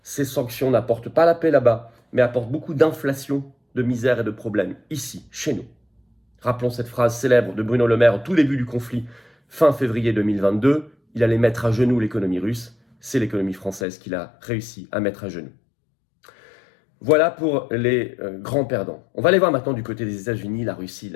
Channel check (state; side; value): drops out; right; at 13.9 s